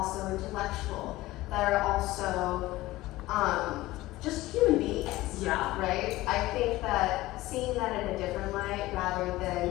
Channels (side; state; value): right; quieter; 17.8 dB